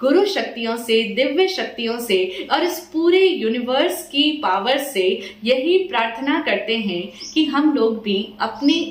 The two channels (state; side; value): identical; both; correlation 1.00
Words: शक्तियों से, दिव्य शक्तियों से और इस पूरे यूनिवर्स की पावर से यही प्रार्थना करते हैं कि हम लोग भी अपने